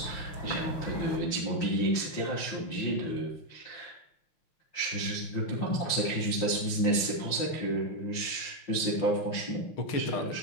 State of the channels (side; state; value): right; late; 5.7 ms